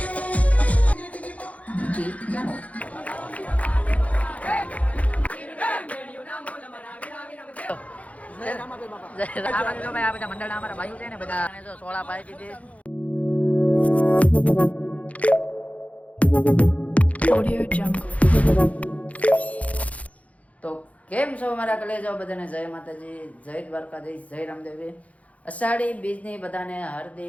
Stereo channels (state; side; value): late; right; 0.068 ms